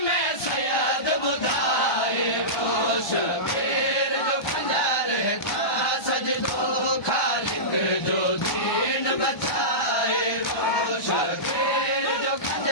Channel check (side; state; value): right; late; 1.2 ms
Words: में सैयद बुधाए वो शबीर जो खंजर था सजदो खालिक जो दीन बचाए वो शबीर जो